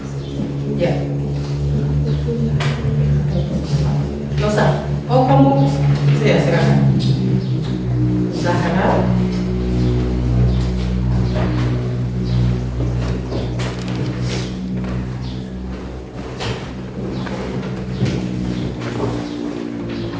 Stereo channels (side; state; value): both; identical; correlation 1.00